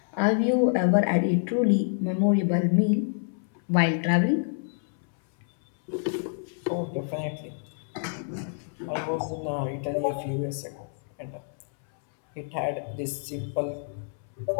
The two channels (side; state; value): right; silent; 60 dB below the other